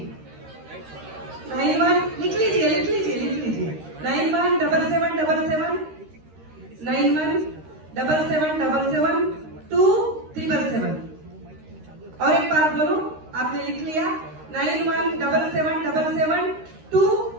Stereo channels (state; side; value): late; left; 13 ms